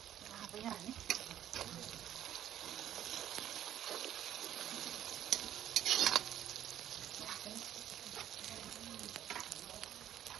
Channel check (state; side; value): quieter; left; 11.3 dB